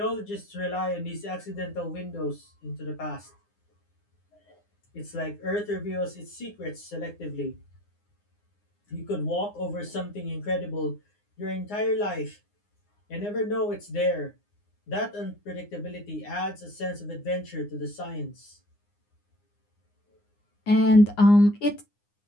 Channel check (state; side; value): late; right; 9.7 ms